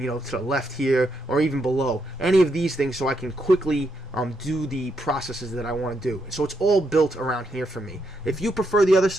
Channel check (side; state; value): both; normal; correlation 0.79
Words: the left here, or even below. Any of these things, so I can quickly do the processes that I want to do. So it's all built around here for me. If you prefer the other